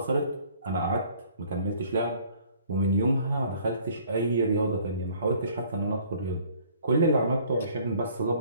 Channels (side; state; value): both; inverted; correlation -0.56